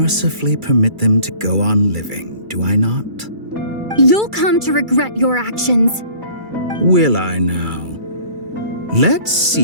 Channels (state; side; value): late; left; 2.3 ms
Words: permit them to go on living, do I not? You'll come to regret your actions. Will I now? Let's